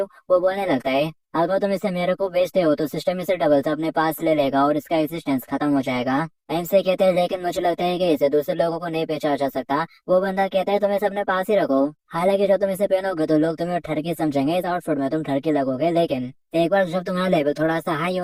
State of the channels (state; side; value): identical; both; correlation 1.00